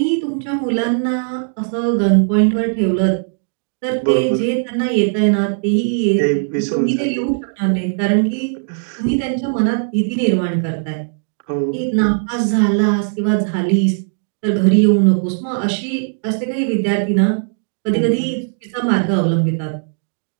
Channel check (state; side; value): silent; left; digital silence